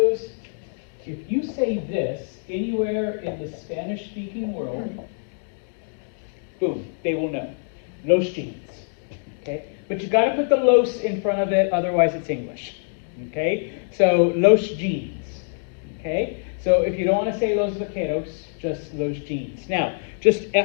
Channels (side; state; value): right; silent; digital silence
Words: if you say this anywhere in the Spanish-speaking world, boom, they will know. Los jeans, okay? But you got to put the los in front of it, otherwise it's English, okay? So los jeans, okay? So if you don't want to say los vaqueros, just los jeans. Now, just